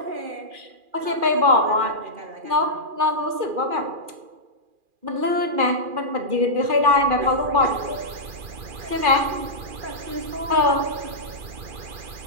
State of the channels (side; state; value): left; late; 2.4 ms